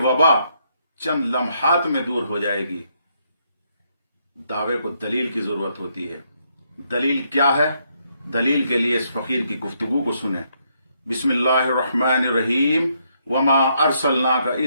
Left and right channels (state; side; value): inverted; both; correlation -0.75